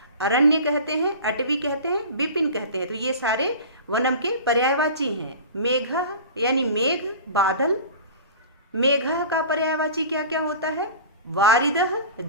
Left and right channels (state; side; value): inverted; both; correlation -0.37